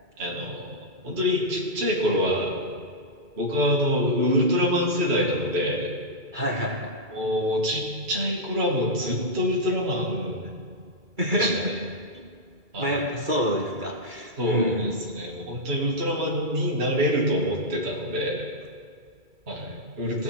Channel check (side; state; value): left; late; 2.3 ms